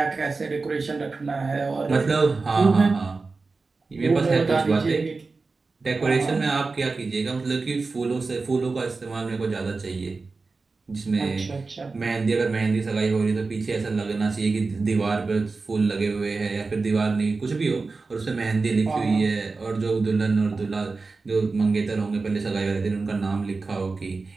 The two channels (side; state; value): left; quieter; 4.0 dB